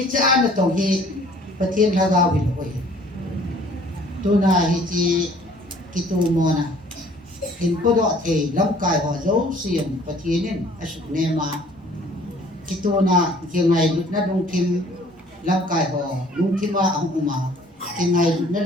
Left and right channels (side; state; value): both; normal; correlation 0.55